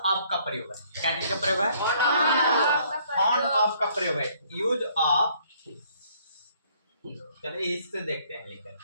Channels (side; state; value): both; inverted; correlation -0.63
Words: का प्रयोग है। क्या चीज का प्रयोग है? फाउंड ऑफ का प्रयोग है। यूज ऑफ, चलिए इससे देखते हैं लेकर।